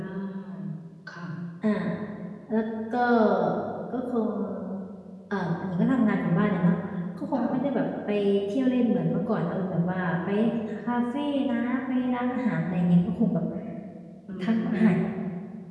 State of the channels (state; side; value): identical; both; correlation 1.00